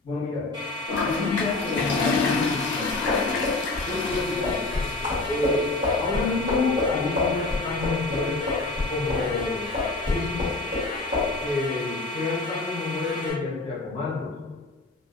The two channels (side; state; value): right; quieter; 3.1 dB